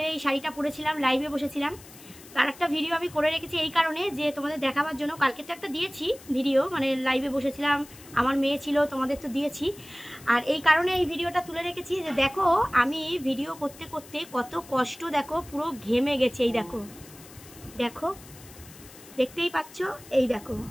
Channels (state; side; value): noise; left; hiss, 20 dB below the sound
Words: এই শাড়িটা পরেছিলাম, লাইভে বসেছিলাম। তার একটা ভিডিও আমি করে রেখেছি এই কারণে যে তোমাদের দেখাবার জন্য। কালকে তো একটা দিয়েছি ভিডিও, মানে লাইভে বসেছিলাম, আমার মেয়ে ছিল, তোমাদের তো দিয়েছি। আর এই কারণে এই ভিডিওটা তুলে রেখেছি যে দেখো আমি ভিডিও করতে করতে কত কষ্ট, দেখো পুরো ঘেমে গেছে। এই দেখো, দেখো দেখতেই পাচ্ছ, এই দেখো